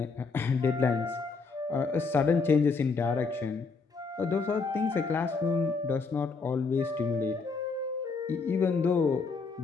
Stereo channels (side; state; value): right; quieter; 4.6 dB